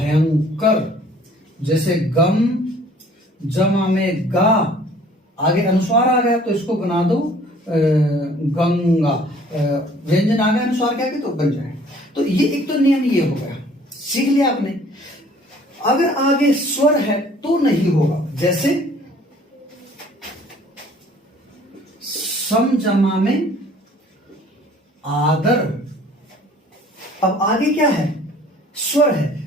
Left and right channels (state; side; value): normal; both; correlation 0.54